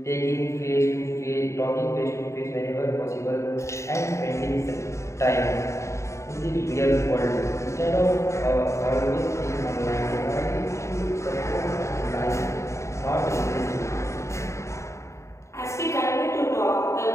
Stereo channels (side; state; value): right; late; 0.14 ms